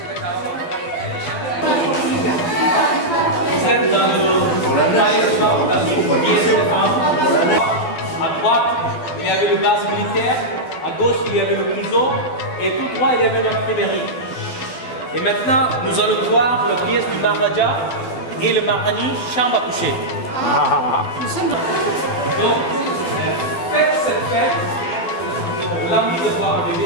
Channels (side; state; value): right; late; 12 ms